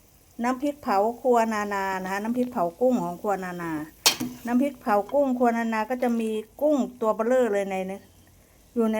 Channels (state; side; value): identical; both; correlation 1.00